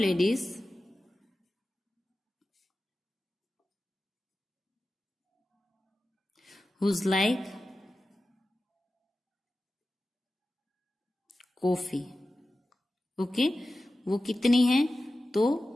who like coffee. Okay, वो कितनी है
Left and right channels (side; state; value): both; normal; correlation 0.94